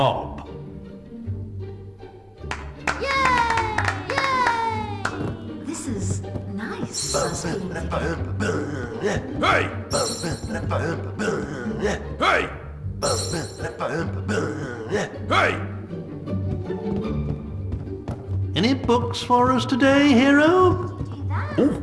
Yay! Yay! This is nice. Hey! Hey! Hey! Any books for us today, hero? Oh,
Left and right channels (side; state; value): both; identical; correlation 1.00